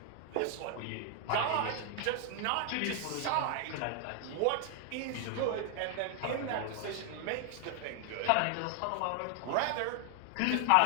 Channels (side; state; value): both; different; correlation 0.00